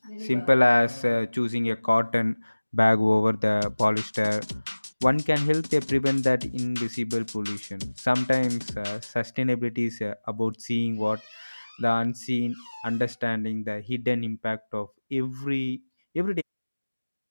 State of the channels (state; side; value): inverted; both; correlation -1.00